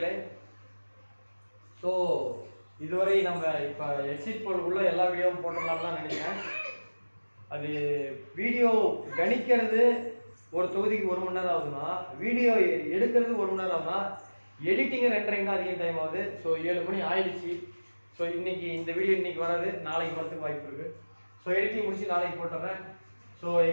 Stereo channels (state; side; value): inverted; both; correlation -1.00